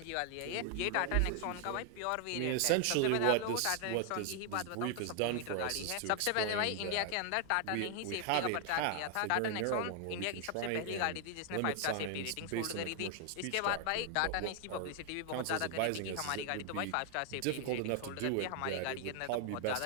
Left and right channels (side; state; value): both; different; correlation 0.00